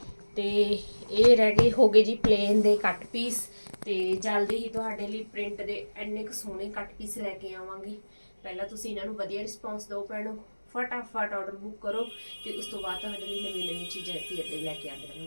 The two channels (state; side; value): inverted; both; correlation -1.00